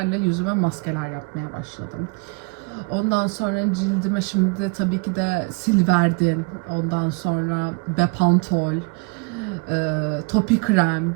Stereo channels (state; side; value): quieter; left; 29.8 dB